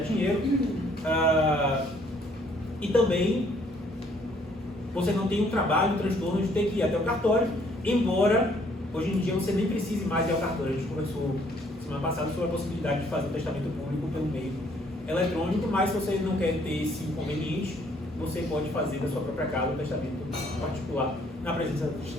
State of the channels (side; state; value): both; normal; correlation 0.64